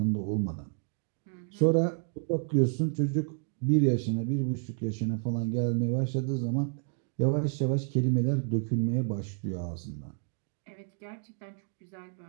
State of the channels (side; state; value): left; silent; 58 dB below the other